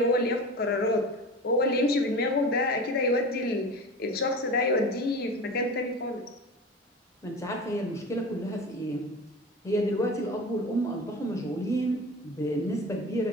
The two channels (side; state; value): both; normal; correlation 0.33